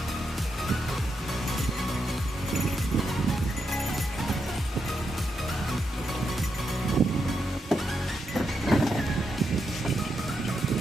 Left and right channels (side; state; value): both; normal; correlation 0.84